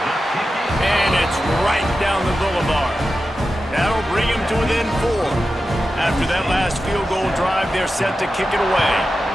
And it's right down the boulevard. That'll bring him to within 4. After that last field goal drive, they're set to kick it away.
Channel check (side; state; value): both; normal; correlation 0.92